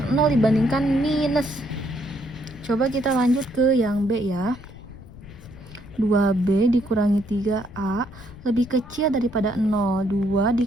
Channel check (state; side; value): noise; left; rumble, 18 dB below the sound